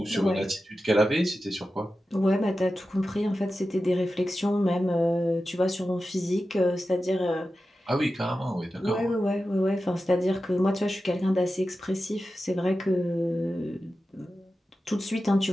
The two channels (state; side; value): normal; both; correlation 0.93